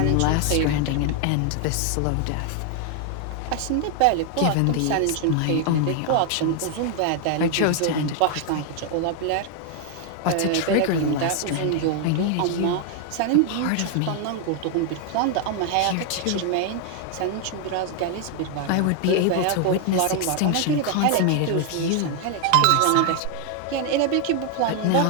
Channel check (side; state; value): both; different; correlation 0.00